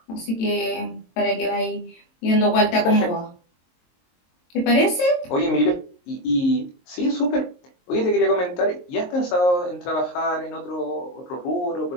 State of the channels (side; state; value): right; late; 22 ms